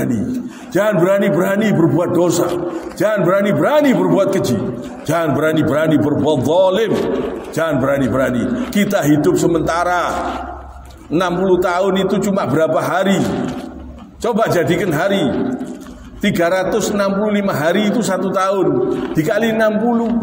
jangan berani-berani berbuat dosa, jangan berani-berani berbuat keji, jangan berani-berani berbuat zalim, jangan berani-berani. Kita hidup sementara, 60 tahun itu cuma berapa hari? Coba jadikan hari, 365 hari itu 1 tahun, dikali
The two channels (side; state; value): both; identical; correlation 1.00